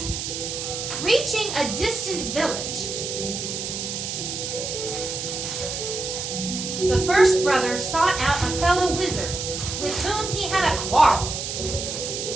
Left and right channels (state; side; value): noise; right; hiss, 5 dB below the sound